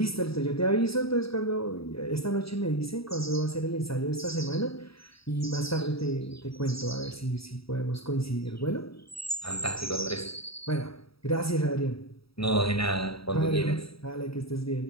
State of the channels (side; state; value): right; late; 0.76 ms